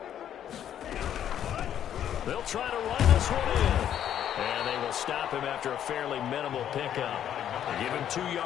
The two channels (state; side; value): quieter; right; 10.1 dB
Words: They'll try to run this one in. And they will stop him after a fairly minimal pickup. They give him 2